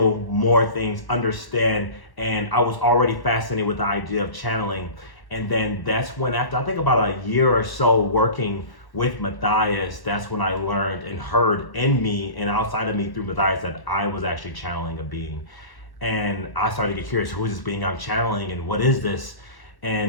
more things, understand, and I was already fascinated with the idea of channeling. And then that's when, after I think about a year or so working with Matthias, that's when I learned and heard in me and outside of me through Matthias that I was actually channeling a being. And I started to get curious, who is this being I'm channeling and what is this?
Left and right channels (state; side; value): late; right; 1.1 ms